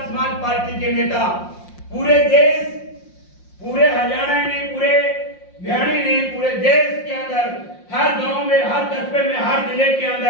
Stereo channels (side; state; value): right; late; 5.6 ms